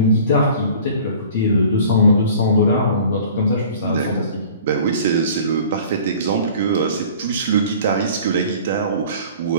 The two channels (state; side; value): inverted; both; correlation -0.46